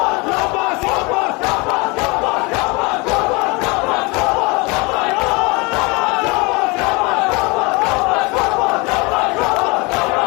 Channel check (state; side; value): quieter; right; 27.3 dB